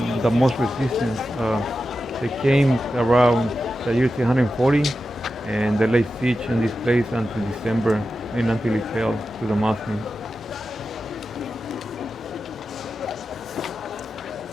most resistance. They came around the year 340 and they laid siege in this place until December and until it fell to the Muslims.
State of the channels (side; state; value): both; normal; correlation 0.91